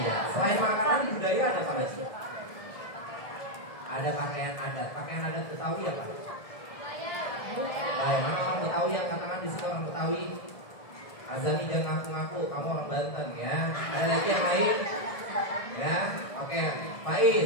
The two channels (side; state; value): right; late; 1.7 ms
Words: Selain makanan, budaya ada apa lagi? Ada pakaian adat. Pakaian adat Betawi apa? Baik, mana orang Betawi yang katakan di sini orang Betawi? Azani jangan ngaku-ngaku, kamu orang Banten ya. Ada lagi yang lain? Ya, oke.